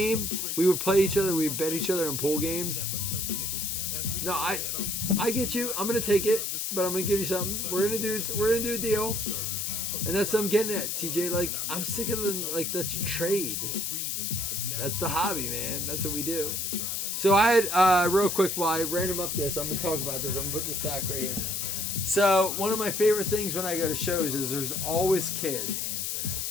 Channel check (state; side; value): noise; left; hiss, 2 dB below the sound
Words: we would play each other. We'd bet each other in pool games. No, I get you. I'm going to take it. But I'm going to give you something. We're going to do a deal. And that's what I'm getting at, TJ. Like, I'm sick of the, like, that's trade. That's the hobby, man. That's what we do. So I had, real quick, while I random up this, I'm going to talk about this. I'm going to put the stack right here. So one of my favorite things when I go to shows is there's always kids.